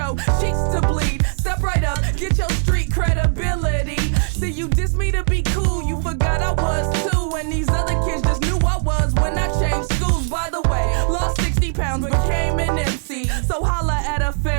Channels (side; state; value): left; silent; digital silence